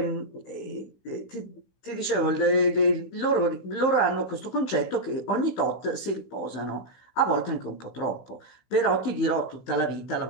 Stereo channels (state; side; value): late; right; 16 ms